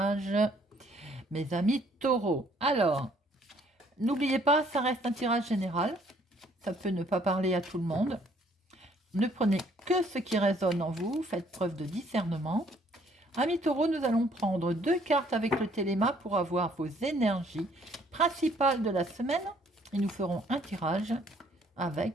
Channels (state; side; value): normal; both; correlation 0.63